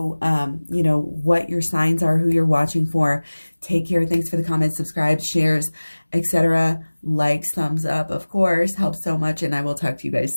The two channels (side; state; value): both; inverted; correlation -1.00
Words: what your signs are, who you're watching for. Take care. Thanks for the comments, subscribe, shares, etc. Likes, thumbs up, of course, helps so much, and I will talk to you